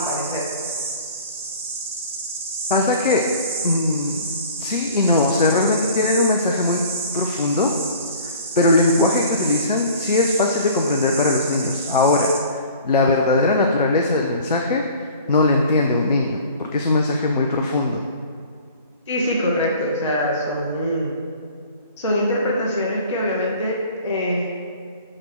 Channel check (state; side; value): inverted; both; correlation -0.46